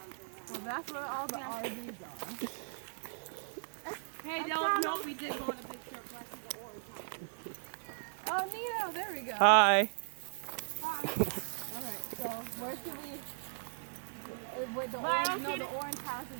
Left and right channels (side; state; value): left; silent; 53 dB below the other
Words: Well, that's where all the RVs are. Hey, no, we did go on a big trip back to the Orange House. Oh, Nino, there we go. Hi. Alright, so where should we... Where the orange, no, the orange